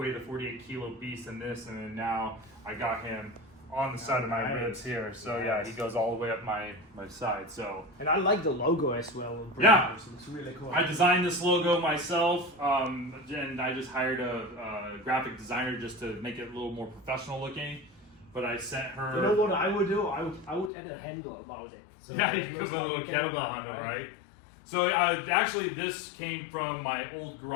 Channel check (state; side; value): drops out; right; at 20.7 s